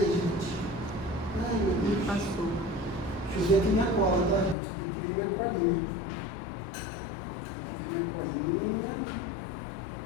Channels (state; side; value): drops out; right; at 4.5 s